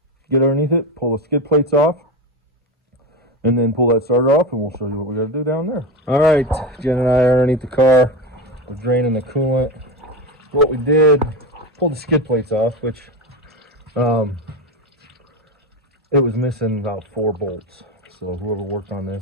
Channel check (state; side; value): normal; both; correlation 0.20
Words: get underneath it, pull the skid plates off, and then pull that starter off, and we'll show you what we got to do down there. All right, Jen and I are underneath the car. We're draining the coolant. What we did, pulled the skid plates off, which it was missing about 4 bolts. So whoever worked on this,